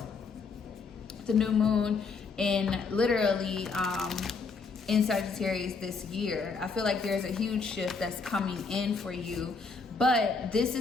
the new moon in literally, in Sagittarius this year. I feel like there's a huge shift that's coming in for you, but this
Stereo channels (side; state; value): right; quieter; 4.6 dB